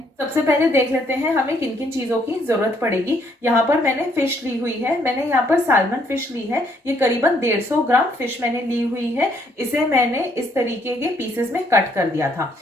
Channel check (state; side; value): normal; both; correlation 0.69